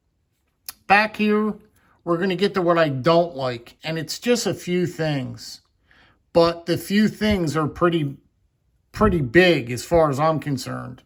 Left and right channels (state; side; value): identical; both; correlation 1.00